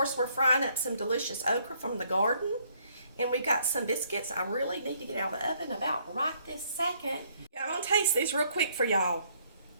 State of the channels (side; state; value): both; inverted; correlation -0.66